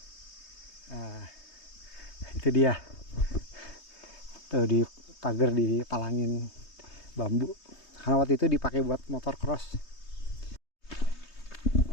Itu dia tuh, di pagar dipalangin bambu karena waktu itu dipakai buat motor cross.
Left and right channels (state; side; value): late; right; 3.2 ms